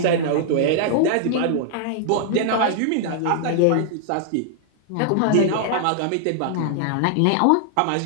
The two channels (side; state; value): both; different; correlation -0.01